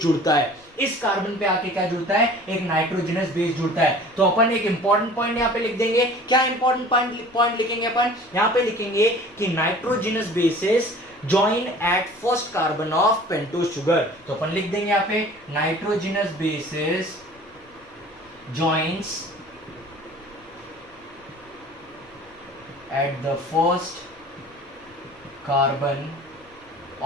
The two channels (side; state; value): left; noise; rumble, 29 dB below the sound